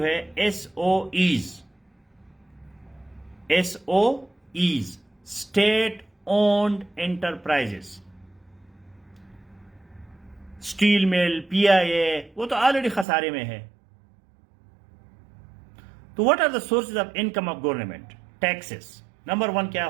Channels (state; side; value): drops out; left; at 13.1 s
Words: ہے، S O Es. S O Es, state owned enterprise. Steel mill, P آئی اے، وہ تو آلریڈی خسارے میں ہے. تو what are the sources of income of government? Taxes. Number 1 کیا